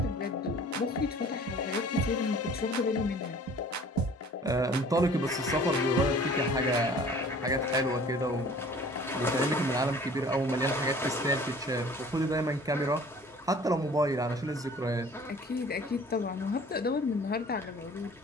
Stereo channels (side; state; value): both; normal; correlation 0.49